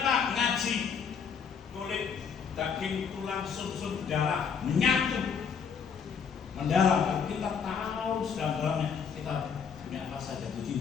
Pak? Ngaji kulit, daging, tulang, sum-sum, darah menyatu, mendalam. Kalau kita tahu sedalam-dalamnya, kita punya rasa jatuh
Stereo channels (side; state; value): right; quieter; 6.6 dB